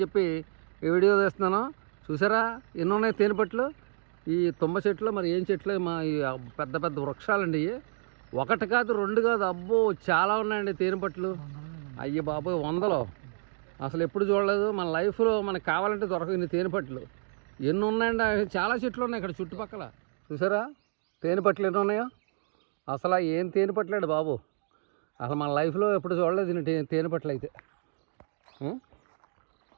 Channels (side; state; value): left; silent; digital silence